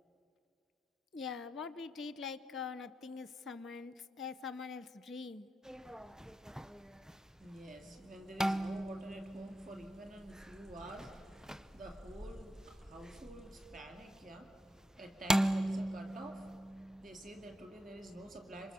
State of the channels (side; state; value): both; normal; correlation 0.85